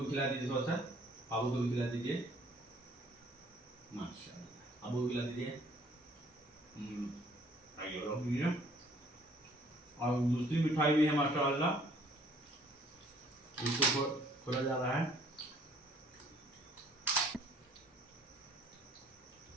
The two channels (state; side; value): normal; both; correlation 0.59